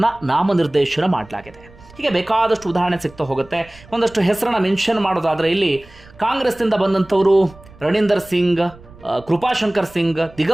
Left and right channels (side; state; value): right; noise; rumble, 23 dB below the sound